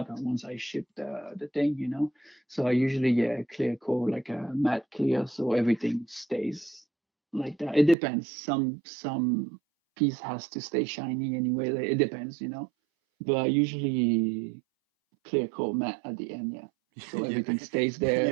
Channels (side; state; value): left; drops out; at 8.0 s